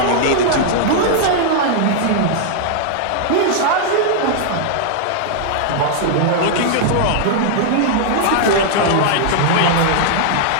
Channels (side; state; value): both; different; correlation -0.01